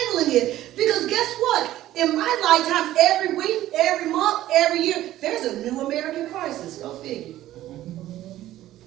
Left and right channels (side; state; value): left; quieter; 14.2 dB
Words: it? Because guess what? In my lifetime, every week, every month, every year, there's a new American crisis. Go figure.